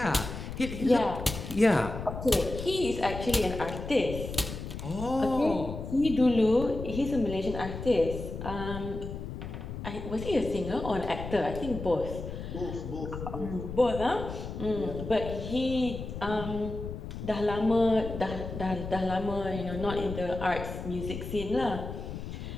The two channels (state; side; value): noise; left; rumble, 8 dB below the sound